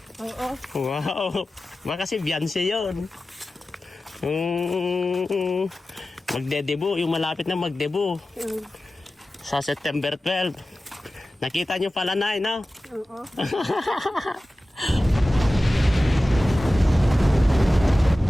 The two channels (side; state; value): both; normal; correlation 0.95